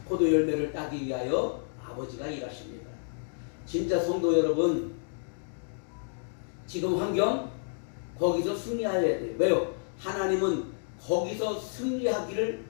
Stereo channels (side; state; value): right; silent; digital silence